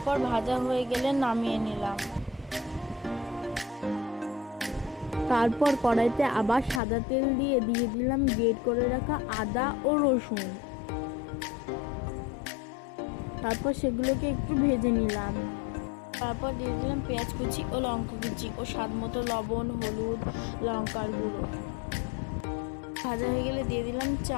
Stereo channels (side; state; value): right; drops out; at 6.8 s